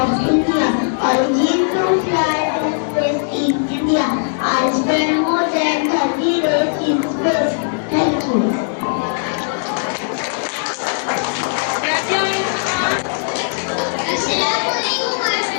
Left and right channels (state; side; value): silent; right; 67 dB below the other